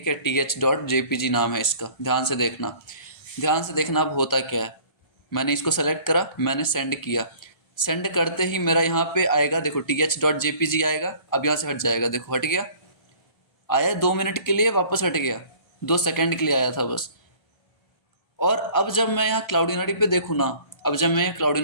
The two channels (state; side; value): late; right; 1.3 ms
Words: है, TH.jpg नाम है इसका, ध्यान से देखना, ध्यान से देखना। अब होता क्या है, मैंने इसको सेलेक्ट करा, मैंने सेंड किया, सेंड करते ही मेरा यहाँ पे आएगा, देखो TH.jpg आएगा। अब यहाँ से हट जाएगा, देखो हट गया, आया 2 मिनट के लिए, वापस हट गया, 2 सेकंड के लिए आया था बस। और अब जब मैं यहाँ क्लाउडिनरी पे देखूँ ना, अब जब मैं